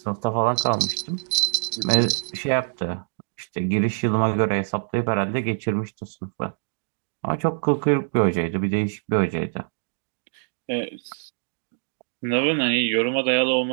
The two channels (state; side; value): silent; left; digital silence